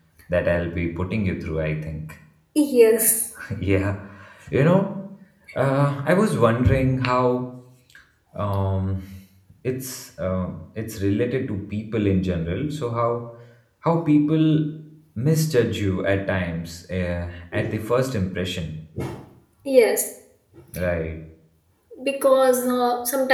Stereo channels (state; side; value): identical; both; correlation 1.00